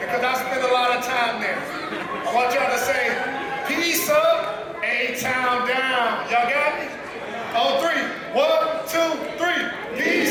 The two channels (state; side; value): identical; both; correlation 1.00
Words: I spend a lot of time there. I want y'all to say, peace up, A-Town down. Y'all got me? On three. 1, 2, 3.